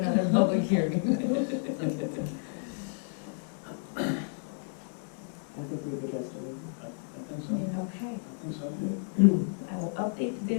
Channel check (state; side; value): silent; right; 57 dB below the other